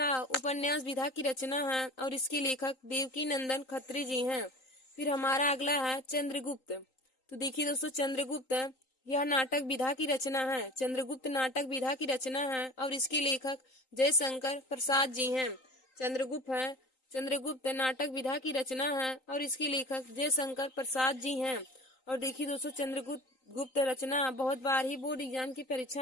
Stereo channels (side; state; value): right; late; 3.9 ms